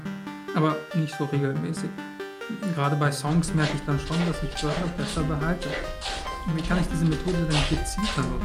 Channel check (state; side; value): identical; both; correlation 1.00